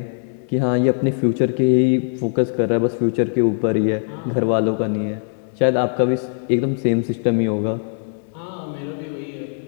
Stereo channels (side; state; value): right; silent; 65 dB below the other